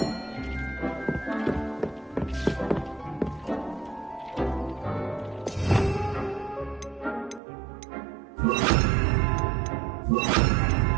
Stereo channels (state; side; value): drops out; left; at 7.4 s